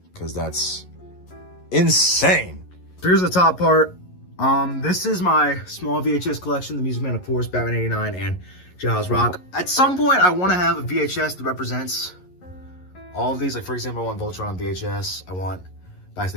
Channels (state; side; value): late; right; 11 ms